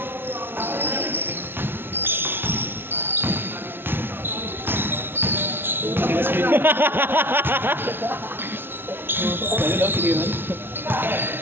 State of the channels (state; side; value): late; left; 0.11 ms